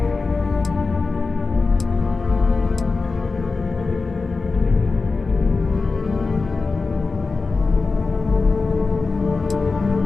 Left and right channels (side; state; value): right; quieter; 4.1 dB